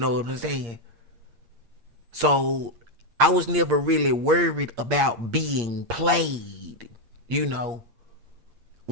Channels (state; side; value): late; left; 8.6 ms